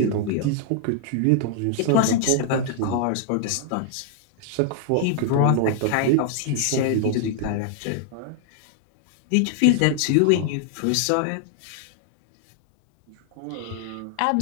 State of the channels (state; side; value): different; both; correlation -0.01